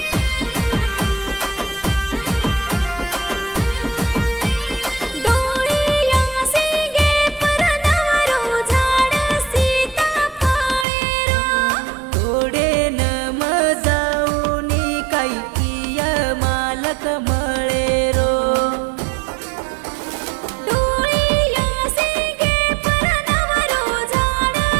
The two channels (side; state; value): left; drops out; at 10.9 s